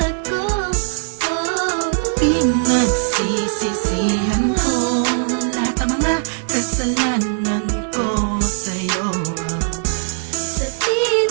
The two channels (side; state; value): left; silent; digital silence